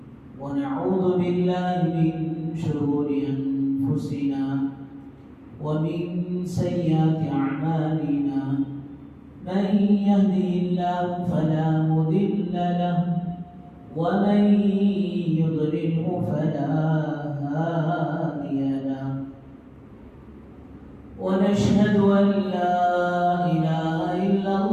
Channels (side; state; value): both; identical; correlation 1.00